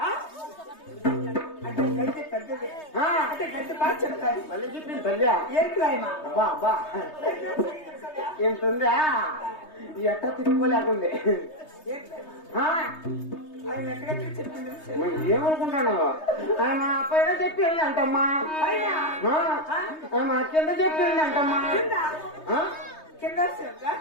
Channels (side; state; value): right; late; 3.2 ms